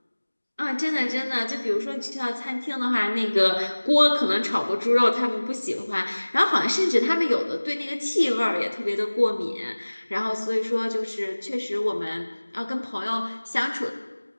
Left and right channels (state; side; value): inverted; both; correlation -1.00